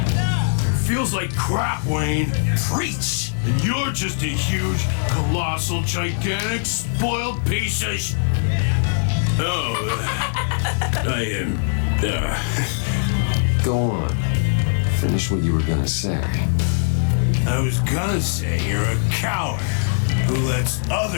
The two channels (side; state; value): right; silent; digital silence